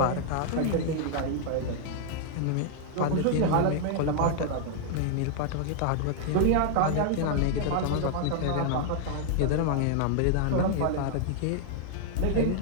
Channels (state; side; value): different; both; correlation -0.01